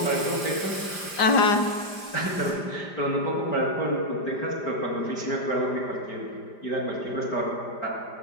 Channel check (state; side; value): late; right; 5.0 ms